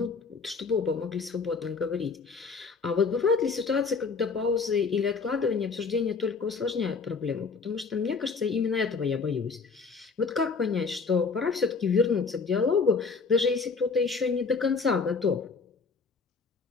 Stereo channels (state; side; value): quieter; right; 4.9 dB